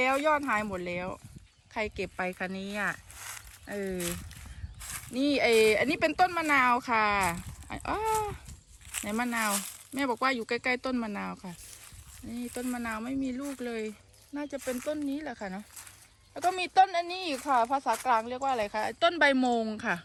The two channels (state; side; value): identical; both; correlation 1.00